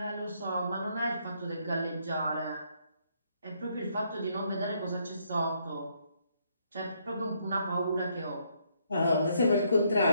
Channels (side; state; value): both; inverted; correlation -0.72